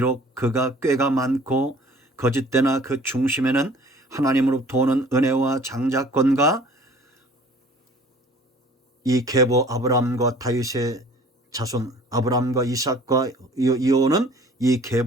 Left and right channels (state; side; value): normal; both; correlation 0.51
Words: 그가 꾀가 많고 거짓되나 그 중심에는 하나님으로부터 오는 은혜와 장자권과 이 계보 아브라함과 다윗의 자손 아브라함과 이삭과 이어오는 이